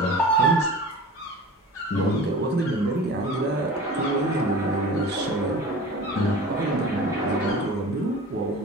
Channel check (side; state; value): both; normal; correlation 0.38